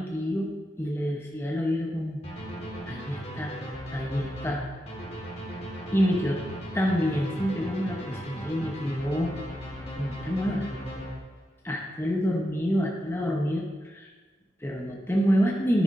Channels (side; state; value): both; normal; correlation 0.87